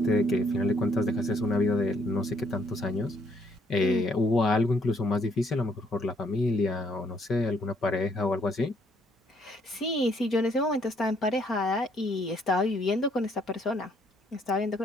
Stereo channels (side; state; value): both; normal; correlation 0.68